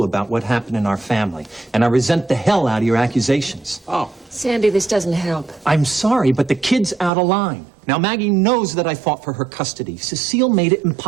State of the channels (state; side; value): drops out; left; at 7.1 s